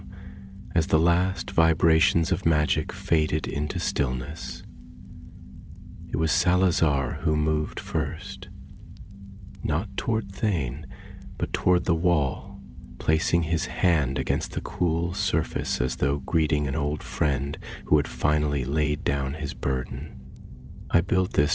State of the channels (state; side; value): identical; both; correlation 1.00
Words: as the last vibrations of magic faded into stillness. It was Salazar who moved first, not toward Thane, but toward the wall, placing his hand against the cool surface as though greeting an old friend who had finally laid down his burden. "I built this